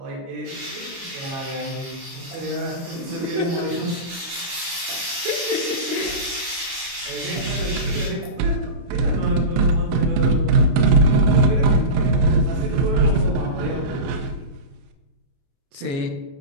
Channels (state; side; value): late; left; 29 ms